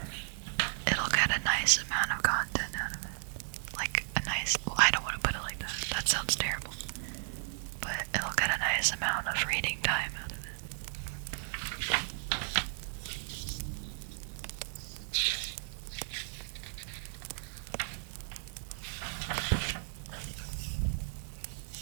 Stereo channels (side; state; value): left; silent; 55 dB below the other